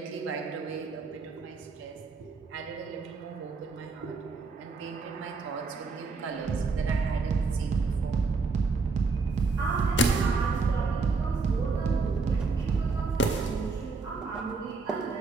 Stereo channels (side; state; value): left; quieter; 4.2 dB